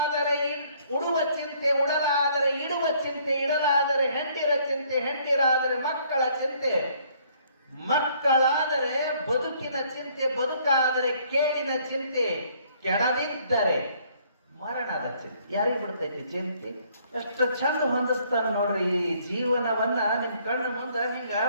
ಉಡುವ ಚಿಂತೆ, ಉಡಲಾದರೆ ಇಡುವ ಚಿಂತೆ, ಇಡಲಾದರೆ ಹೆಂಡಿರ ಚಿಂತೆ, ಹೆಂಡಿರಾದರೆ ಮಕ್ಕಳ ಚಿಂತೆ, ಮಕ್ಕಳಾದರೆ ಬದುಕಿನ ಚಿಂತೆ, ಬದುಕಾದರೆ ಕೇಳಿನ ಚಿಂತೆ, ಕೆಡದಿದ್ದರೆ ಮರಣದ ಚಿಂತೆ. ಯಾರಿಗೆ ಬಿಡ್ತೈತಿ ಚಿಂತೆ? ಎಷ್ಟು ಚಂದ ಹೊಂದಿಸ್ತಾನ ನೋಡ್ರಿ ಈ ಜೀವನವನ್ನ. ನಿಮ್ ಕಣ್ಣು ಮುಂದ ಹಿಂಗ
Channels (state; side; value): inverted; both; correlation -0.63